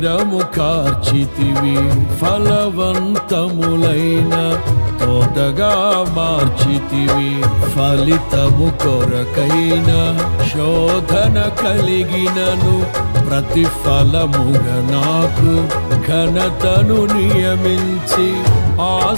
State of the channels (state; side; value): inverted; both; correlation -1.00